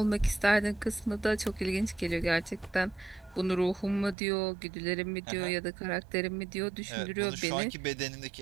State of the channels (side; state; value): left; drops out; at 4.2 s